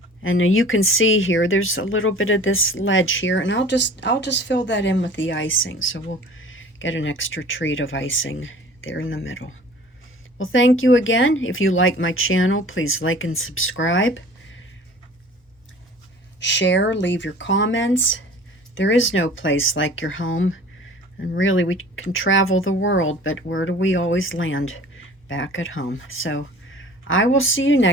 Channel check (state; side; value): normal; both; correlation 0.45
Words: And you can see here, there's a little bit of this ledge here, and I'll just fill that in with the icing. So we'll get an extra treat of icing there in the middle. Well, thank you again. If you like my channel, please like and subscribe. Share, leave your comments. There is no place like your home. And really, we can travel the world, but where do we always land? Back at home. So I will see you